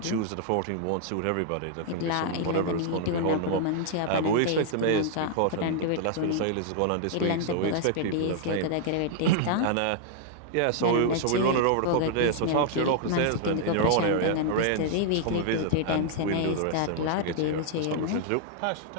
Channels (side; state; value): both; different; correlation -0.01